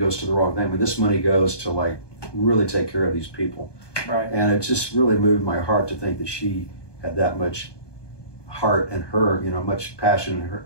to the wrong thing. I mean, this money goes to like really take care of these people. Right. And it just really moved my heart to think that she had that much heart in her, you know, much passion in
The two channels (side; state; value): right; late; 1.2 ms